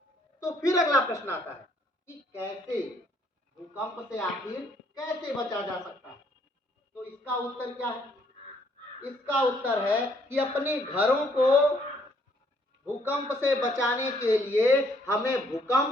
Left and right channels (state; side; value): normal; both; correlation 0.67